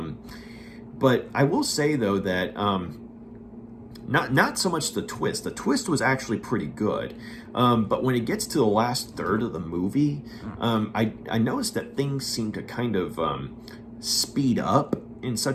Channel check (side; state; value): both; identical; correlation 1.00